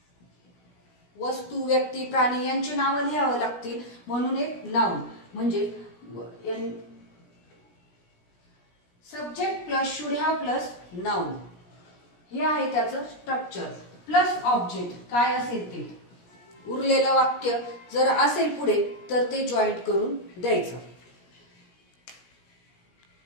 वस्तू, व्यक्ती, प्राणी यांची नावं लिहावं लागतील म्हणून एक नाउन. म्हणजे subject plus should have plus noun हे आहे त्याचं स्ट्रक्चर. प्लस ऑब्जेक्ट काय असेल ते. उरलेलं वाक्य जर असेल पुढे तर ते जॉईंट करून द्यायचं.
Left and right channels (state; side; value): late; right; 17 ms